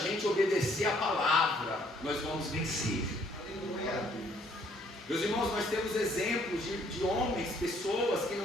obedecer à palavra, nós vamos vencer. Meus irmãos, nós temos exemplos de homens, pessoas que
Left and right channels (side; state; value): both; normal; correlation 0.64